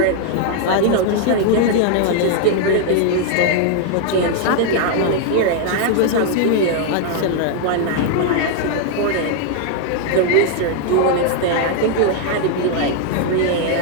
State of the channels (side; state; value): both; different; correlation 0.00